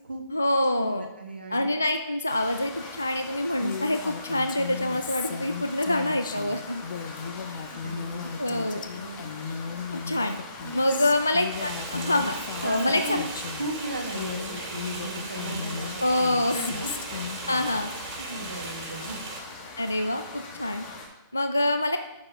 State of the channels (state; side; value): inverted; both; correlation -0.79